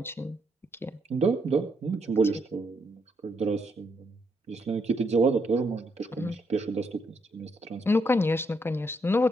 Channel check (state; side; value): normal; both; correlation 0.76